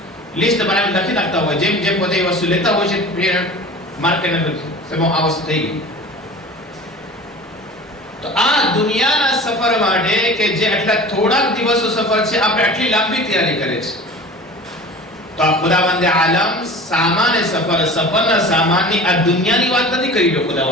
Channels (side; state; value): both; normal; correlation 0.39